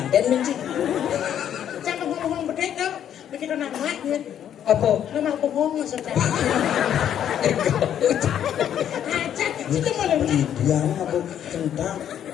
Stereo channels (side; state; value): right; quieter; 9.9 dB